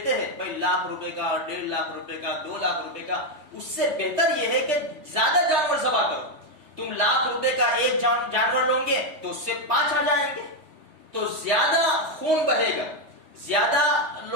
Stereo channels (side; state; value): left; late; 3.2 ms